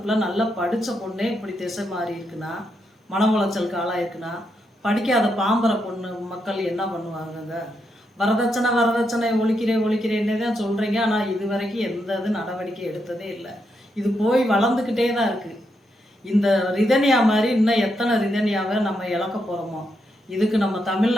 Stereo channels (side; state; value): both; normal; correlation 0.81